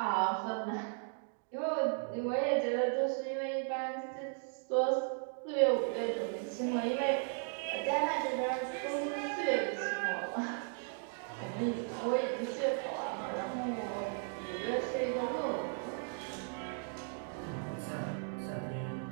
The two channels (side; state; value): left; silent; 54 dB below the other